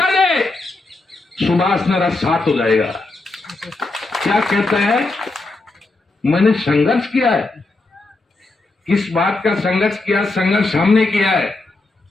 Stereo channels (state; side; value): quieter; right; 3.2 dB